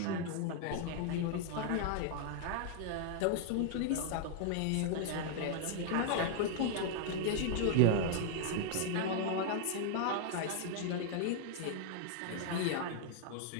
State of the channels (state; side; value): different; both; correlation 0.00